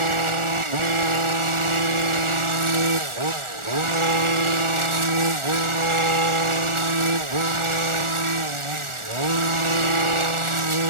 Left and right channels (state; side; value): late; left; 1.4 ms